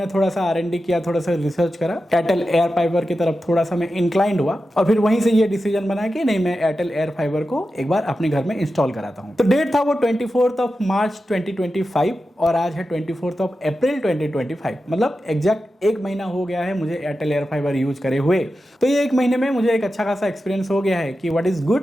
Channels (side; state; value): both; normal; correlation 0.91